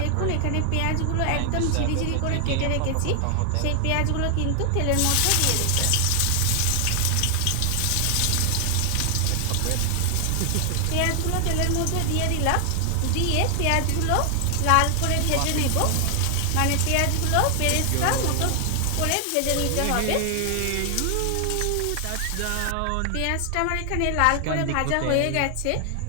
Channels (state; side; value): different; both; correlation 0.00